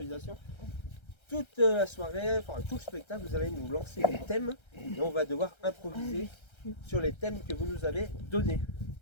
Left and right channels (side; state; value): right; late; 1.3 ms